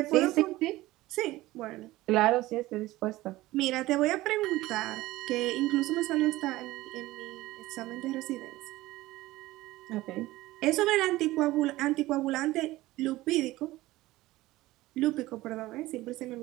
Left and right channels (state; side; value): quieter; left; 17.8 dB